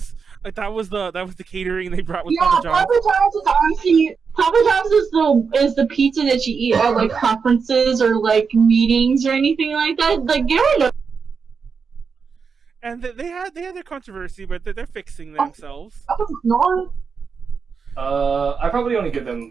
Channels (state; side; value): quieter; left; 5.6 dB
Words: Like that was the catering they brought with Yeah, Papa John's. Papa John's is honestly Papa John's is the pizza that you eat at like conferences or like meetings or anything like that. Like you don't know. And they had their controversy, but they're fixing themselves. No. I probably only give them.